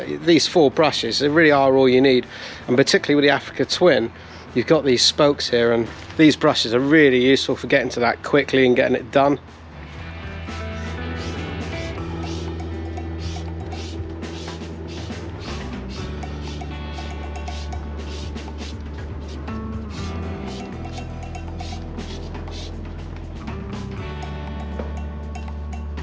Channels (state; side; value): identical; both; correlation 1.00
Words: these 4 brushes, they really are all you need. And particularly with the Africa Twin, you've got these spokes here, and these brushes are really useful for getting to that quickly and getting it done.